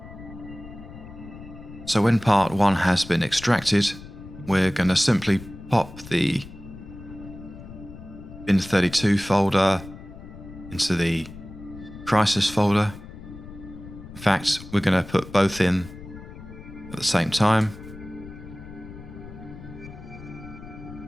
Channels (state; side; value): noise; left; rumble, 15 dB below the sound